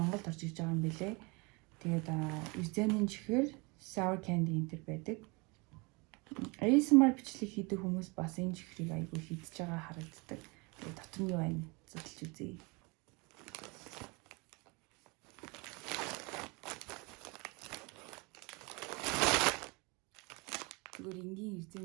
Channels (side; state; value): left; quieter; 28.2 dB